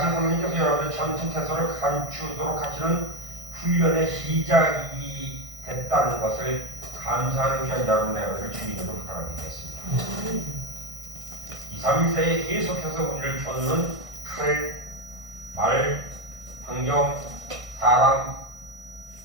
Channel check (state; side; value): late; left; 1.5 ms